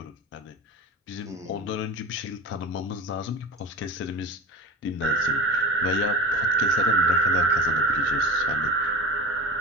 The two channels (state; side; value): normal; both; correlation 0.31